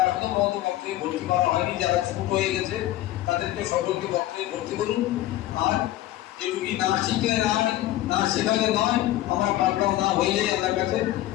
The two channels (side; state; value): right; quieter; 14.9 dB